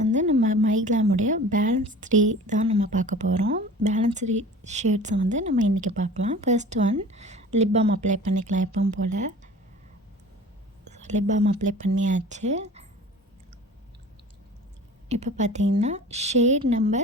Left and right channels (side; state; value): both; normal; correlation 0.41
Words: நம்ம மைக்லாமுடைய பேலன்ஸ் 3 தான் நம்ம பார்க்க போகிறோம். பேலன்ஸ் 3 ஷேட்ஸை வந்து நம்ம இன்றைக்கி பார்க்கலாம். First one lip balm apply பண்ணிக்கலாம் எப்பவும் போல். லிப் பாம் அப்ளை பண்ணியாச்சு. இப்போ பார்த்தீங்கன்னா ஷேட்